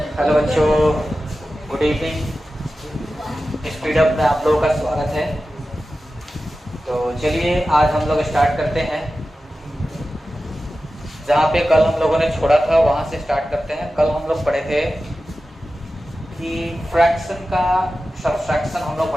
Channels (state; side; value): normal; both; correlation 0.94